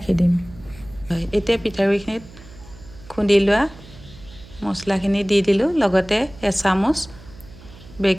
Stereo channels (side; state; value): right; noise; hum, 20 dB below the sound